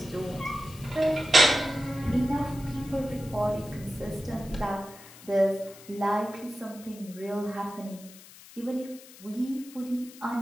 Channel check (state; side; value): noise; left; hiss, 19 dB below the sound